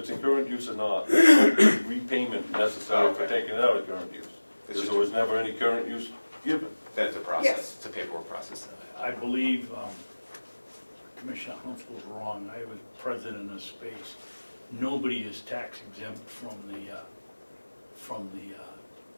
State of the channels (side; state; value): both; inverted; correlation -1.00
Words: in current use or not, there's no repayment necessary for Okay. taking it out of current use. Because there was never any current use given. Then it's a process, Yes. it's a paperwork process. I believe Commissioner Hounsell was wrong. I was president of Space. Nobody is tax exempt from the